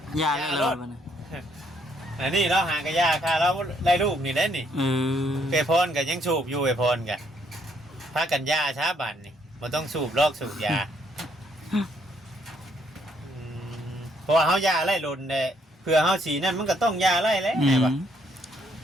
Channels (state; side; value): normal; both; correlation 0.70